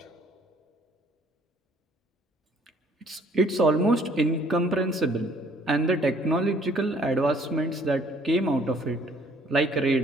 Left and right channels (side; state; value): both; normal; correlation 0.60